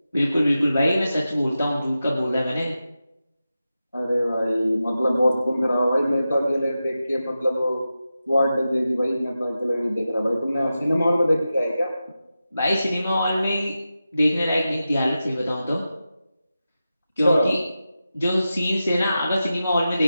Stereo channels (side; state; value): both; inverted; correlation -0.92